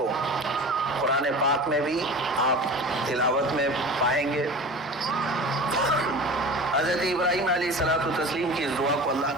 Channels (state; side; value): normal; both; correlation 0.36